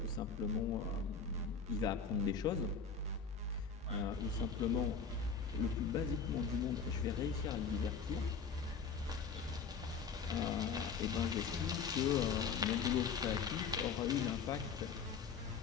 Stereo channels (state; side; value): quieter; right; 5.8 dB